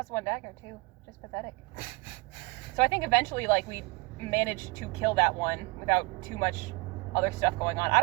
dagger too. Just pathetic. So I think eventually, like, we managed to kill that one without too much other stuff going on. I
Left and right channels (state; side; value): quieter; left; 27.0 dB